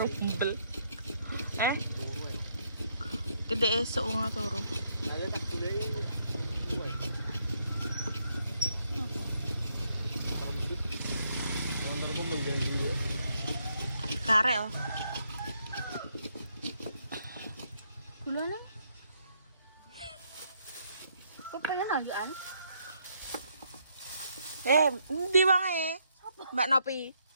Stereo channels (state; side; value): inverted; both; correlation -0.74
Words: umbel. Gede esuk wong turu. Ada tak boleh. Motorku mengganggu. Karek oh. Gulane. Kok pengen ajuan? Endi wae? Mbak Nopi.